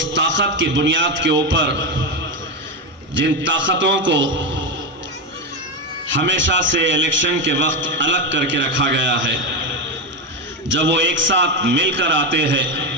ताकत की बुनियाद के ऊपर जिन ताकतों को हमेशा से इलेक्शन के वक्त अलग करके रखा गया है, जब वो एक साथ मिलकर आते हैं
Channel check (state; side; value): normal; both; correlation 0.13